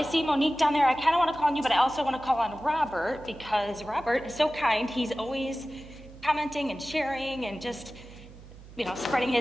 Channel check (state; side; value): noise; right; hum, 18 dB below the sound